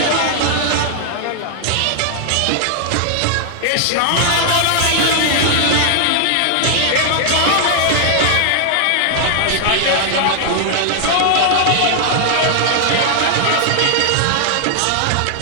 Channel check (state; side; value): different; both; correlation 0.00